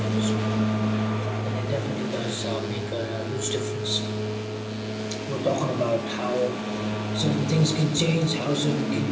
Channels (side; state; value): both; identical; correlation 1.00